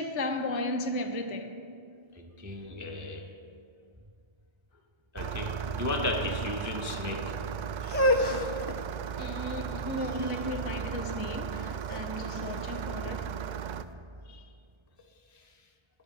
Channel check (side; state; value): left; late; 1.3 ms